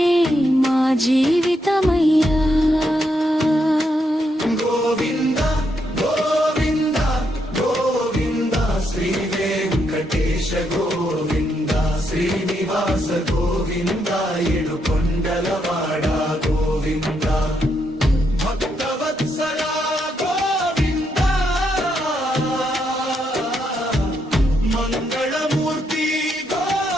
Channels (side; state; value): both; normal; correlation 0.79